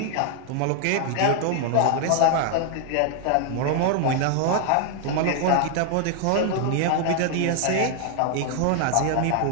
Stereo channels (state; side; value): different; both; correlation 0.00